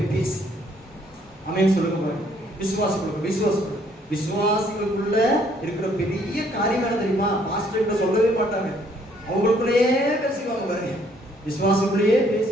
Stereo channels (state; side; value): normal; both; correlation 0.65